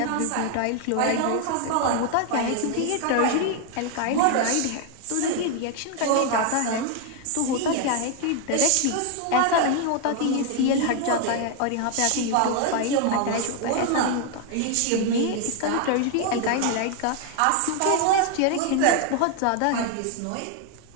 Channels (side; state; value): both; different; correlation 0.00